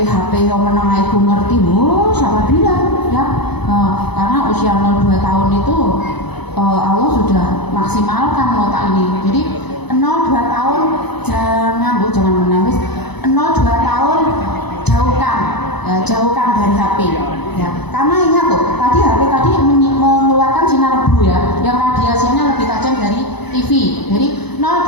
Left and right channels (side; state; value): right; late; 0.99 ms